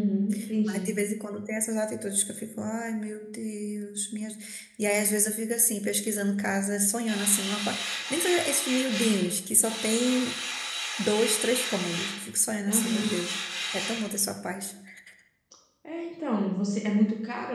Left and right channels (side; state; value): both; identical; correlation 1.00